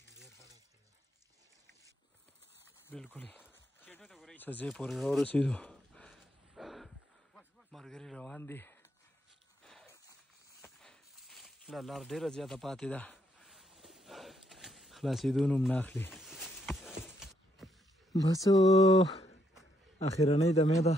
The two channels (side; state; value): both; normal; correlation 0.74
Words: بالکل څه ځای پورې راورسېدو ملګري روان دي لا لار ډېره زیاته پاتې ده خلاصېدو نوم نه اخلي بس اخرنۍ دمې ده